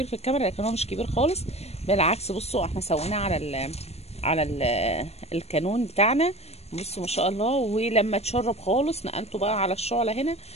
في الكاميرا لكن هو مش كبير خالص، بالعكس. بصوا احنا سويناه على الكانون بتاعنا. بصوا ما شاء الله. ولما اتشرب خالص نقلته بقى على الشعله هنا.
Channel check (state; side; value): late; right; 0.31 ms